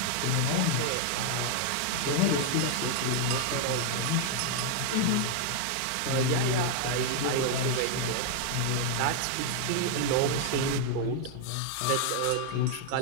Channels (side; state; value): both; different; correlation 0.00